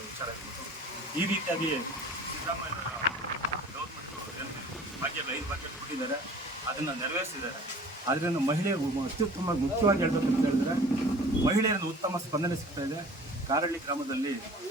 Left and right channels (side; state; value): both; normal; correlation 0.45